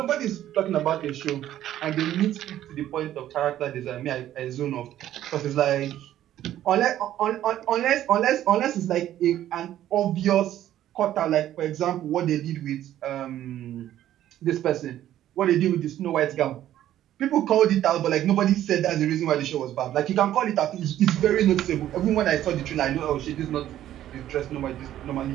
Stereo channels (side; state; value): left; quieter; 12.4 dB